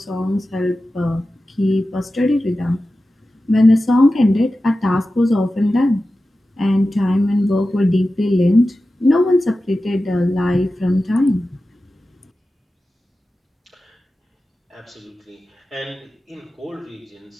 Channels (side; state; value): both; normal; correlation 0.94